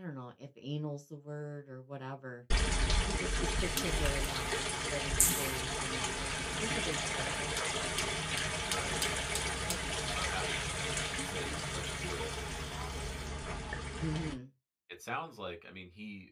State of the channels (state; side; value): identical; both; correlation 1.00